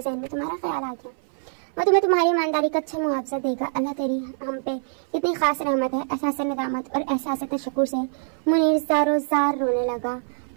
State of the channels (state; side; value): silent; left; 59 dB below the other